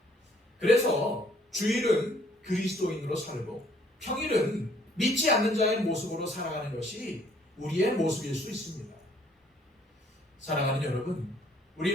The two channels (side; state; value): both; normal; correlation 0.62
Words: 그래서 주일은 그리스도인으로 살고 평일은 믿지 않는 자의 모습으로 살아가는 것이 우리의 모습일 수 있습니다. 사랑하는 여러분,